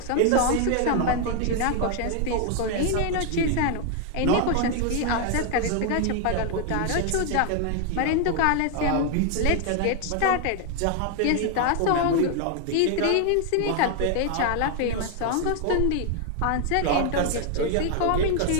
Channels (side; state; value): both; different; correlation 0.00